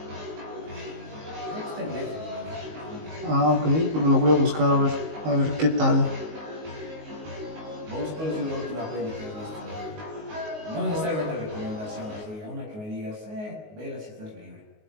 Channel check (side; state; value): left; late; 19 ms